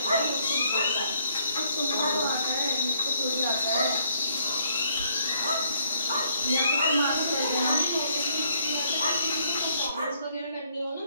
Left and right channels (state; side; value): inverted; both; correlation -0.68